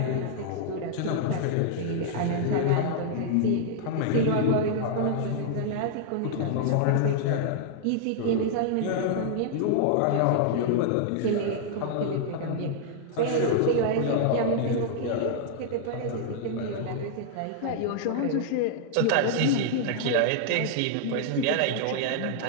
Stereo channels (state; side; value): different; both; correlation -0.01